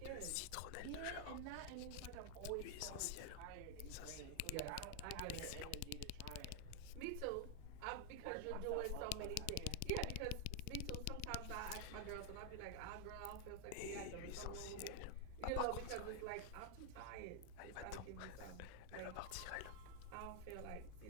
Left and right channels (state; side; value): different; both; correlation 0.00